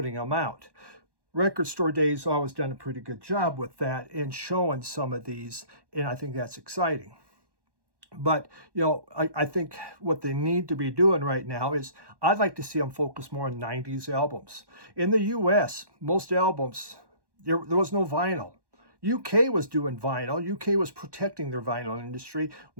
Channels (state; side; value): late; left; 1.1 ms